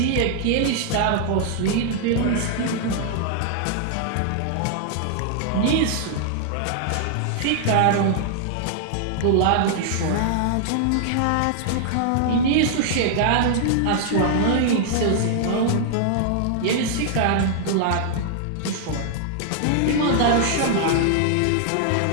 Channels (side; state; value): both; different; correlation -0.01